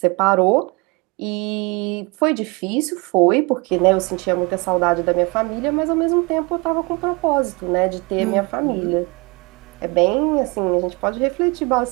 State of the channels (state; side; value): quieter; left; 28.4 dB